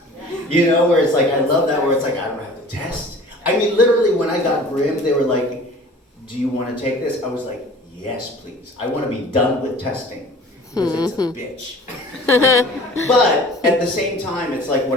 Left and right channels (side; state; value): both; normal; correlation 0.45